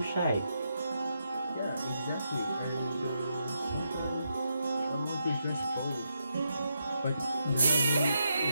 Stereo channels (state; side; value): inverted; both; correlation -0.82